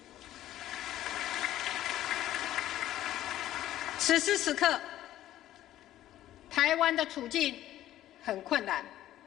此时此刻，台湾的处境很困难，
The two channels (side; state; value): right; quieter; 13.4 dB